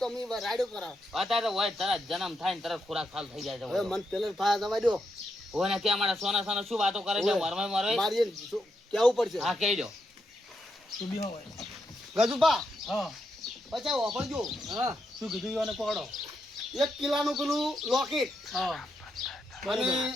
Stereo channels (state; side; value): normal; both; correlation 0.82